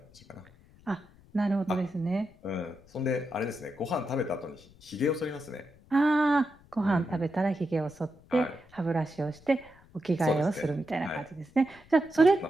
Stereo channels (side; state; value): left; noise; rumble, 26 dB below the sound